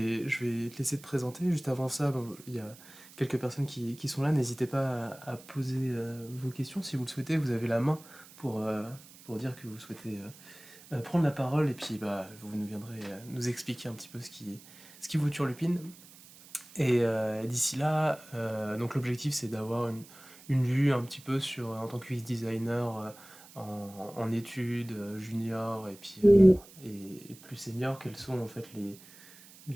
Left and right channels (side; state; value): right; noise; hiss, 21 dB below the sound